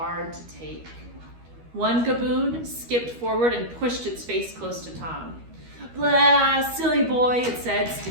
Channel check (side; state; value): left; late; 13 ms